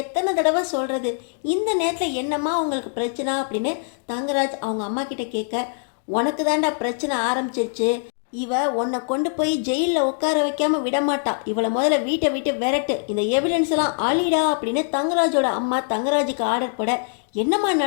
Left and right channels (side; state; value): right; silent; 62 dB below the other